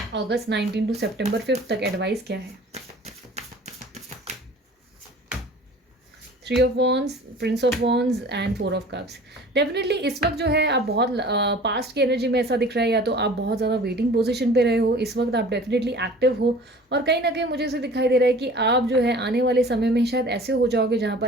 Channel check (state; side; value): normal; both; correlation 0.45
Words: अगस्त 19 टू सितंबर 5 तक एडवाइस क्या है। 3 of wands, Prince of wands and 4 of cups. Definitely इस वक्त जो है आप बहुत पास्ट की एनर्जी में ऐसा दिख रहा है, या तो आप बहुत ज़्यादा वेटिंग पोजीशन पे रहे हो, इस वक्त आप डेफिनेटली एक्टिव हो। और कहीं ना कहीं मुझे ऐसे दिखाई दे रहा है कि आप जो है आने वाले समय में शायद ऐसे हो जाओगे जहाँ पर